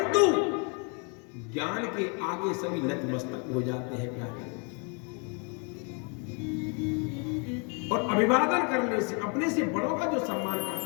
ज्ञान के आगे सभी नतमस्तक हो जाते हैं। क्या और अभिवादन करने से, अपने से बड़ों का जो सम्मान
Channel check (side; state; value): right; quieter; 34.8 dB